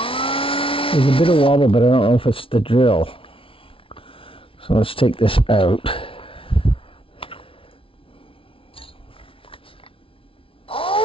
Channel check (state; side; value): late; right; 0.26 ms